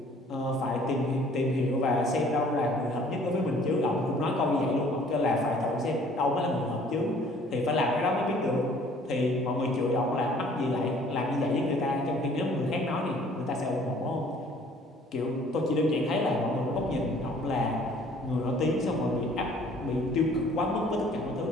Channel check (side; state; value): both; normal; correlation 0.56